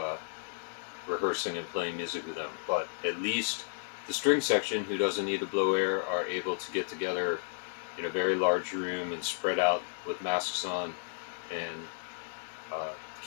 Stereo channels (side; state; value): right; silent; 56 dB below the other